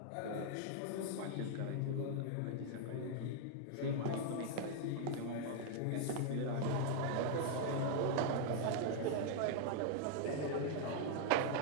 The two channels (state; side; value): different; both; correlation 0.00